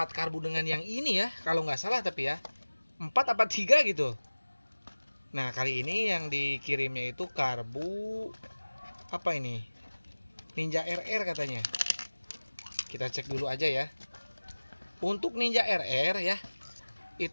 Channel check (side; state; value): both; inverted; correlation -1.00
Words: dengan yang ini ya. Kalau nggak salah tapi ya 4 apa 3 gitu. Nah kali ini yang dikirimnya itu karbu apa ini? Ninja RR katanya. Kita cek dulu aja ya. Untuk Ninja RR ya,